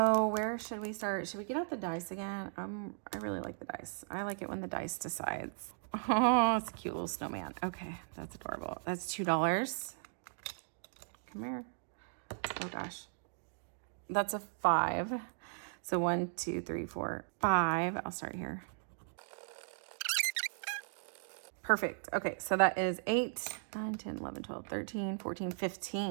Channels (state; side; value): silent; left; digital silence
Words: where should we start? Should we get out the dice again? I really like the dice. I like it when the dice decides. Oh, it's a cute little snowman. Okay, that's adorable. That's $2. Come here. Oh gosh. That's a 5. So 1, 2, 3, 4, 5. I'll start here. Perfect. Okay, so that is 8, 9, 10, 11, 12, 13, 14,